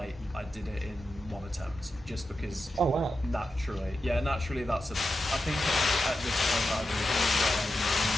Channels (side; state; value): both; normal; correlation 0.90